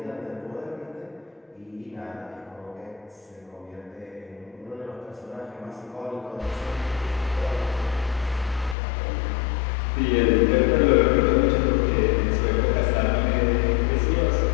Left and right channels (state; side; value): drops out; right; at 8.8 s